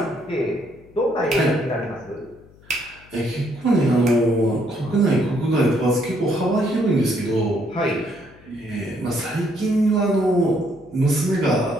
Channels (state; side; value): noise; left; hum, 26 dB below the sound